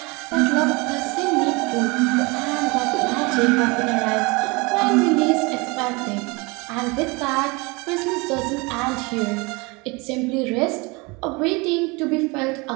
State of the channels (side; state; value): left; quieter; 26.6 dB